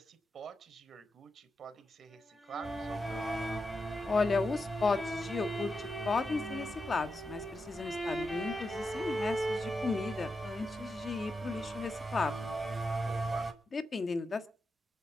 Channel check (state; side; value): normal; both; correlation 0.87